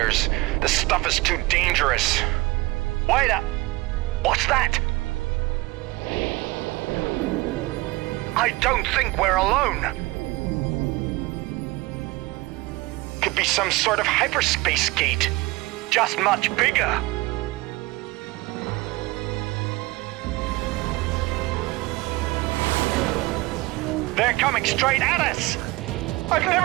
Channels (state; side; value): quieter; left; 21.6 dB